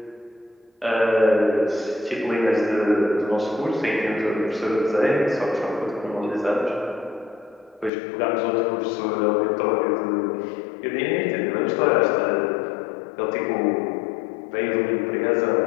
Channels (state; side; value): drops out; right; at 7.9 s